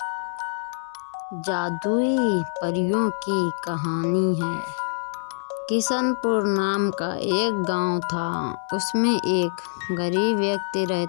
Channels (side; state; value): right; silent; digital silence